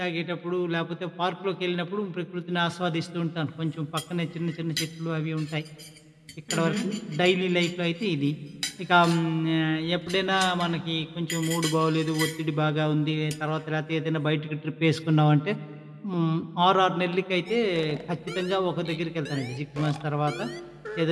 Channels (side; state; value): both; identical; correlation 1.00